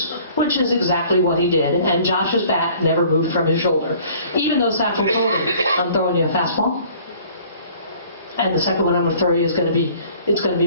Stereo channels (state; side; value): inverted; both; correlation -0.53